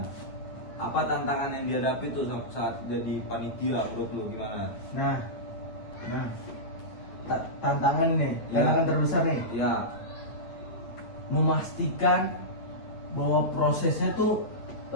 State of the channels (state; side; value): late; right; 9.1 ms